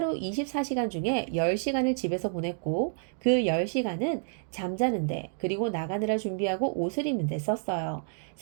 24시간 중에 10시간을 집에서 보냈고 그 10시간은 잠자는데 그리고 나가느라 준비하고 옷을 입는데 썼어요.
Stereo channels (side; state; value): left; silent; digital silence